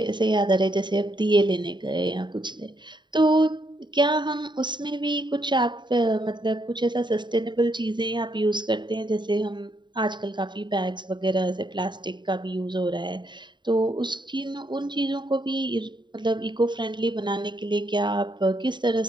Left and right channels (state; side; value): late; left; 0.22 ms